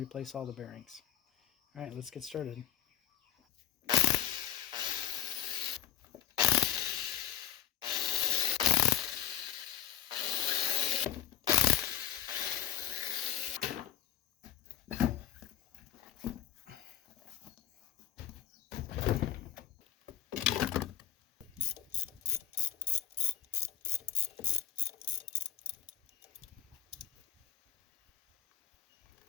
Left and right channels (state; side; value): quieter; right; 11.5 dB